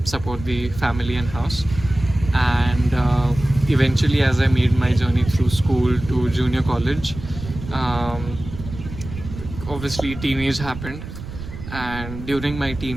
support the family and house. And eventually, as I made my journey through school to junior college, um, obviously teenage happened, and during my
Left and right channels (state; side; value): noise; right; rumble, 11 dB below the sound